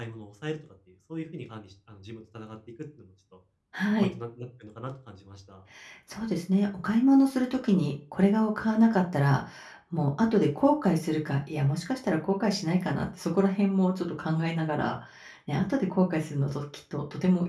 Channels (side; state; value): both; identical; correlation 1.00